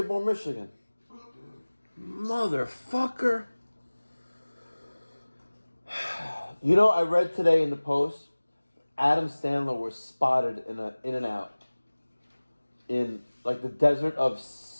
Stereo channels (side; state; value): both; inverted; correlation -1.00